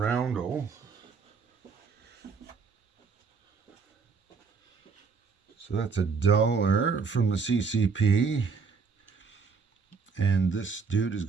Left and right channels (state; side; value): quieter; left; 5.1 dB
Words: So that's $1 from the CCP. And this dude is